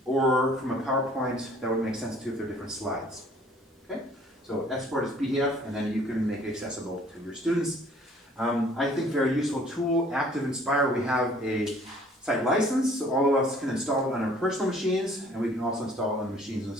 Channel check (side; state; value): both; normal; correlation 0.56